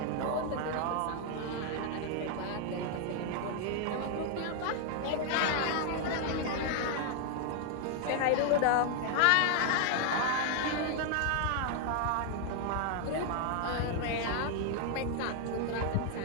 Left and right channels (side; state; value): both; different; correlation 0.00